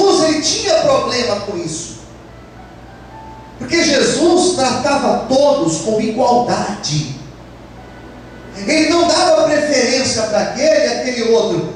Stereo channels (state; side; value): identical; both; correlation 1.00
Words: ele tinha problema com isso, porque Jesus tratava todos com igualdade. Ele não dava preferência para aquele e aquele outro,